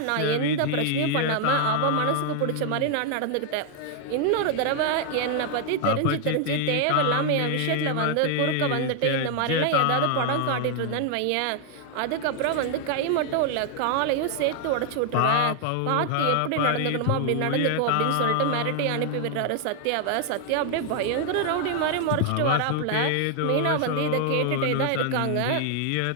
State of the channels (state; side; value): different; both; correlation 0.00